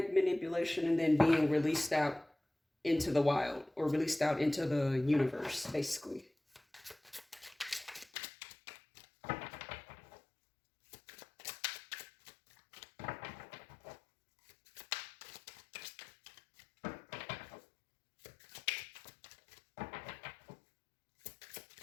manipulation and then being released out into the wild, or released out into the universe, basically.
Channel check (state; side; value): drops out; right; at 8.1 s